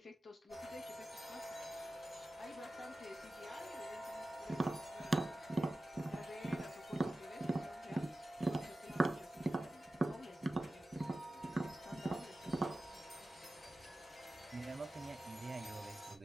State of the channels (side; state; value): both; normal; correlation 0.95